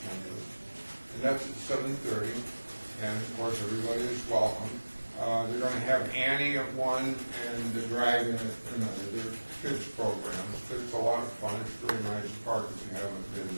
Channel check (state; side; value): inverted; both; correlation -1.00